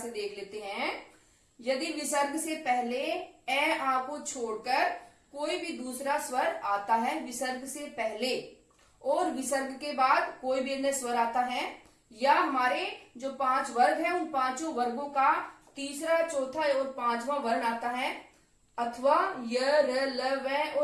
देख लेते हैं। यदि विसर्ग से पहले ए आ को छोड़कर कोई भी दूसरा स्वर आता है विसर्ग से पहले, और विसर्ग के बाद कोई भी अन्य स्वर आता है, या हमारे जो 5 वर्ग हैं उन पांचों वर्गों का तीसरा चौथा और पांचवा वर्ण आता है, अथवा य र ल व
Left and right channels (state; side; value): identical; both; correlation 1.00